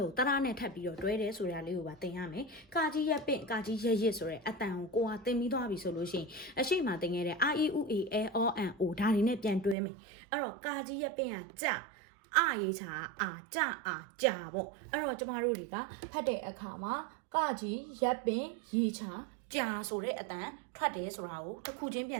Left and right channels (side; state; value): left; drops out; at 9.8 s